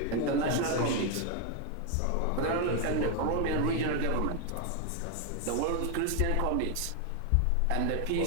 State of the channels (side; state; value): both; different; correlation 0.01